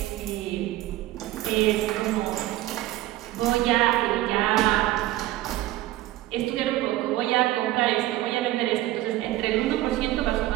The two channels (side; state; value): left; quieter; 15.8 dB